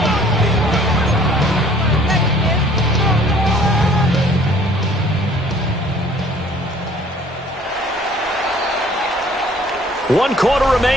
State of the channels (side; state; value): both; normal; correlation 0.55